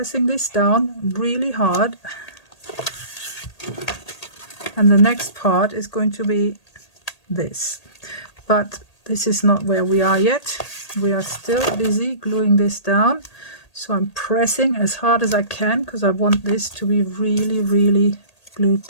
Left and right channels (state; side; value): late; right; 1.8 ms